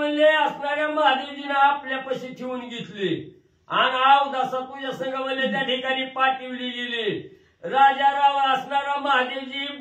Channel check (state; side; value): identical; both; correlation 1.00